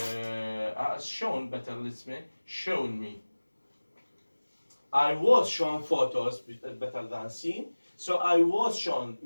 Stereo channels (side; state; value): both; inverted; correlation -1.00